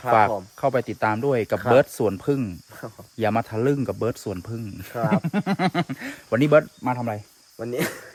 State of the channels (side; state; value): both; identical; correlation 1.00